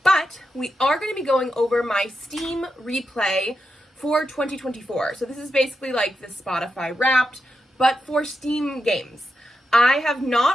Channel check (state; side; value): normal; both; correlation 0.86